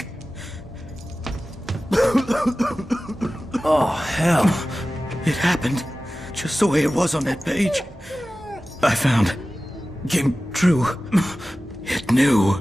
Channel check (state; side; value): normal; both; correlation 0.96